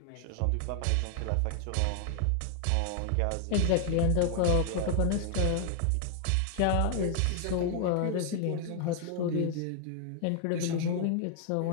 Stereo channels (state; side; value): different; both; correlation 0.00